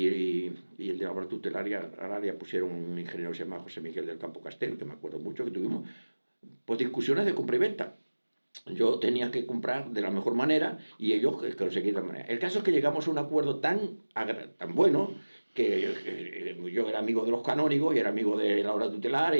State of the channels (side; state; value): both; inverted; correlation -1.00